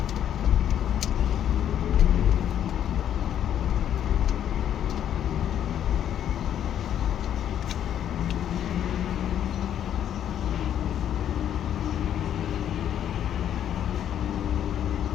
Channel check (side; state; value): right; quieter; 10.1 dB